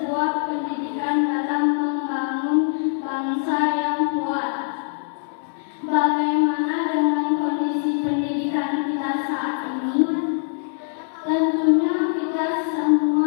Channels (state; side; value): silent; right; digital silence